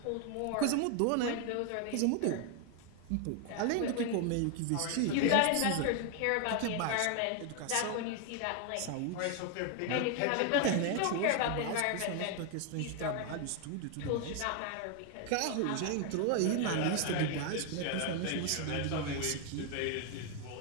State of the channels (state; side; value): different; both; correlation 0.00